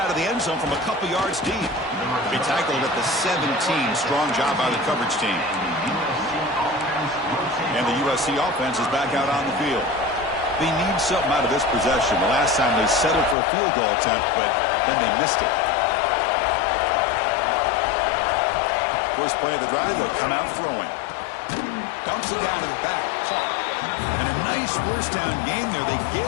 of the end zone from a couple yards deep. He tackled at the 17. Strong job by the coverage team. And the USC offense is back out on the field. They need something out of this possession. The last time they settled for a field goal attempt, but then they missed it. First play of the drive, they'll come out throwing. Dumps it down to the back. Caught. And a nice first down game there. They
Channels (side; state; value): right; drops out; at 13.4 s